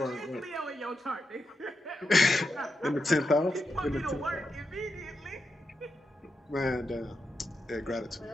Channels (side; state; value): both; normal; correlation 0.86